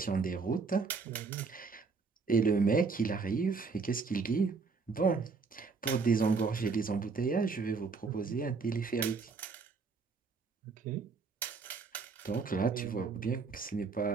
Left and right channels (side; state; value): left; quieter; 4.6 dB